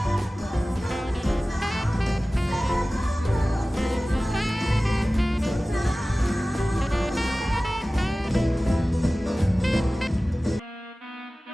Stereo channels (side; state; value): both; normal; correlation 0.97